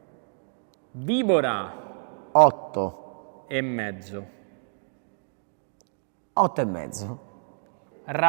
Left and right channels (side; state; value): left; silent; digital silence